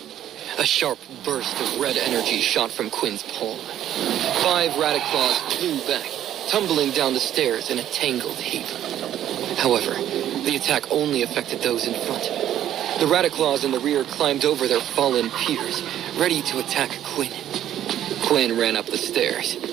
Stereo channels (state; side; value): quieter; left; 11.4 dB